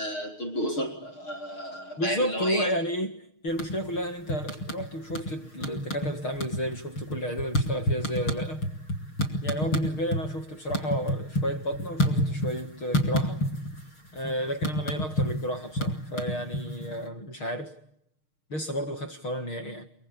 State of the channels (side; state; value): right; late; 6.5 ms